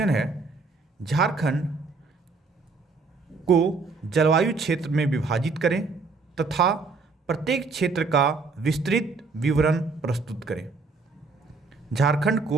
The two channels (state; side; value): quieter; left; 4.1 dB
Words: है झारखंड को जलवायु क्षेत्र में विभाजित करें तथा प्रत्येक क्षेत्र का विस्तृत विवरण प्रस्तुत करें। झारखंड